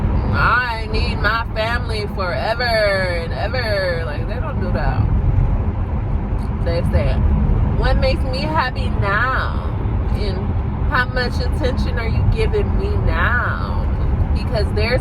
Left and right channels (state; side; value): identical; both; correlation 1.00